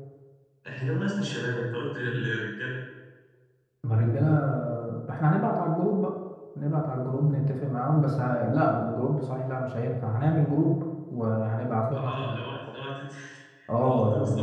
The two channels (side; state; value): both; identical; correlation 1.00